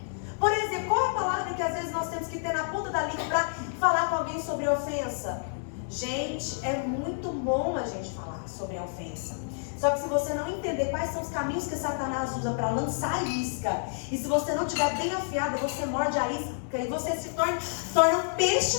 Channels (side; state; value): right; silent; digital silence